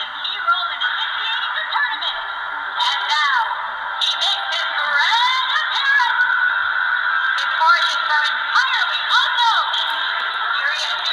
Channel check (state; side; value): identical; both; correlation 1.00